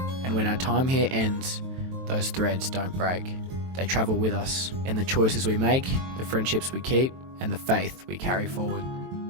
And when our time here ends, those threads don't break. They travel with us in the choices we make, the friendships we keep, and the faith we carry forward.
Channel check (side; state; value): left; late; 23 ms